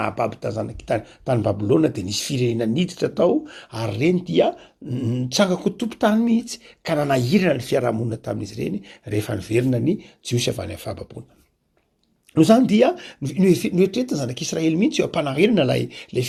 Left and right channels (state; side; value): identical; both; correlation 1.00